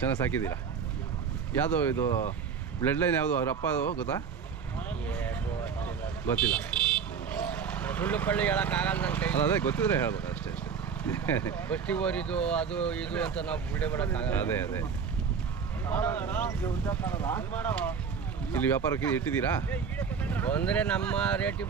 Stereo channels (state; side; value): quieter; left; 6.5 dB